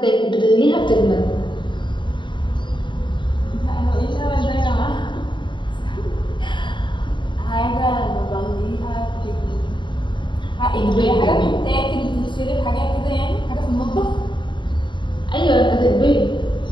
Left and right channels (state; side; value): late; right; 0.23 ms